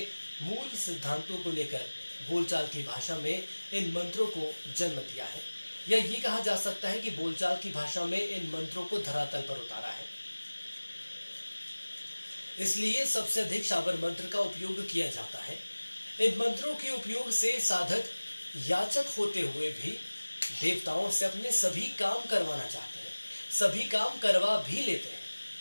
मूल सिद्धांतों को लेकर बोलचाल की भाषा में इन मंत्रों को जन्म दिया है, या ये कहा जा सकता है कि बोलचाल की भाषा में इन मंत्रों को धरातल पर उतारा है। इसलिए सबसे अधिक शाबर मंत्र का उपयोग किया जाता है। इन मंत्रों के उपयोग से साधक याचक होते हुए भी देवताओं से अपने सभी काम करवाना चाहते हैं, सभी काम करवा भी लेते हैं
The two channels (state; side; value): inverted; both; correlation -1.00